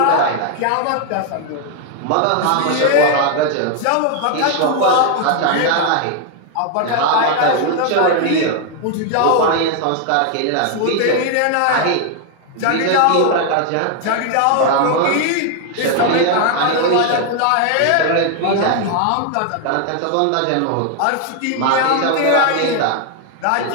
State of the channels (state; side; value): different; both; correlation 0.00